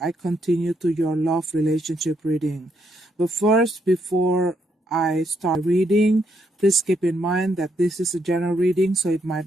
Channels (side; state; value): both; normal; correlation 0.75